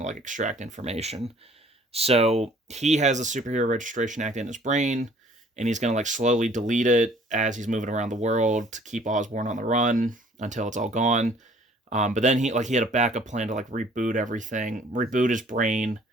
extract information. So he has the Superhero Registration Act in his brain, and he's going to slowly delete it as he's moving around the world to keep Osborn on the run until it's all gone. But then he had a backup plan to reboot everything, reboot his brain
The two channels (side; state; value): both; normal; correlation 0.56